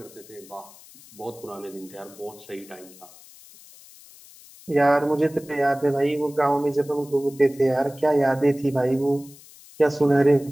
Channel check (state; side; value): noise; left; hiss, 22 dB below the sound